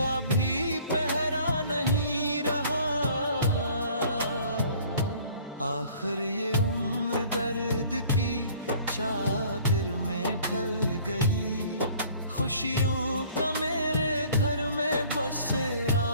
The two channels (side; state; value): both; inverted; correlation -0.53